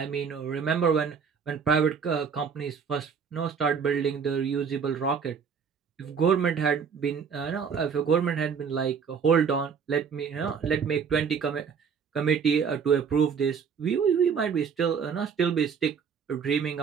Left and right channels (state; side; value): quieter; left; 6.4 dB